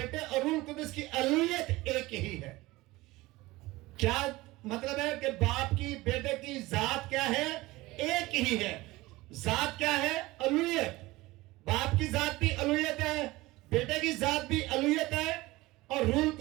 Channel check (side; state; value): left; quieter; 19.9 dB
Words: اور روح القدس کی الوہیت ایک ہی ہے. کیا مطلب ہے کہ باپ کی بیٹے کی ذات کیا ہے؟ ایک ہی ہے. ذات کیا ہے؟ الوہیت. باپ کی ذات بھی الوہیت ہے, بیٹے کی ذات بھی الوہیت ہے, اور روح